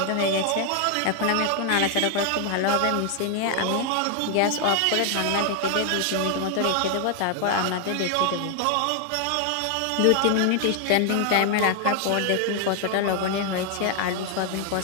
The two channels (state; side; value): different; both; correlation 0.00